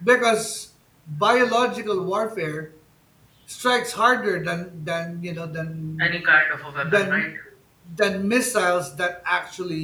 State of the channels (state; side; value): identical; both; correlation 1.00